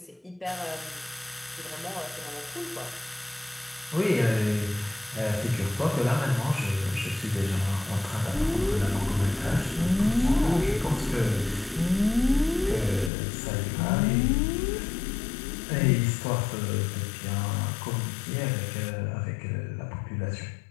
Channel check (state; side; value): drops out; right; at 13.1 s